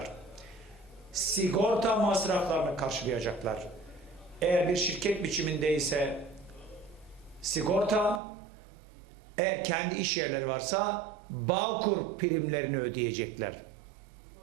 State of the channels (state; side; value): drops out; left; at 8.2 s